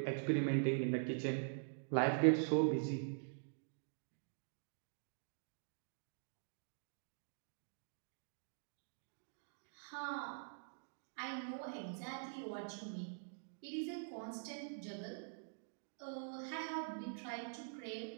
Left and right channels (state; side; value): silent; left; digital silence